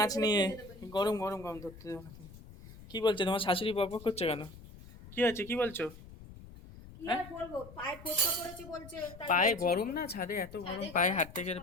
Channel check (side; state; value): left; noise; rumble, 17 dB below the sound